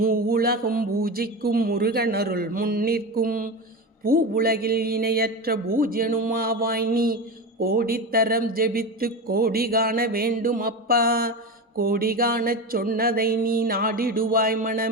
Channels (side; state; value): both; normal; correlation 0.22